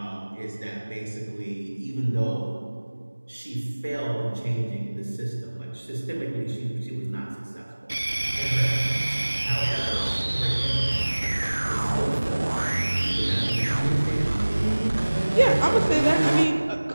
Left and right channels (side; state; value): both; inverted; correlation -1.00